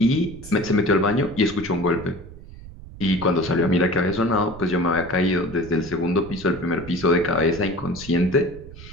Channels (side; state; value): right; noise; rumble, 16 dB below the sound